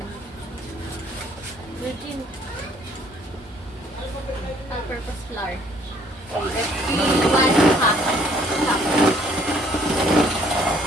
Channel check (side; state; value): both; normal; correlation 0.61